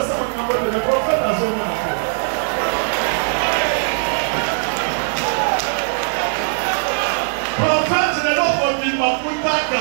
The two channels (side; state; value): left; silent; digital silence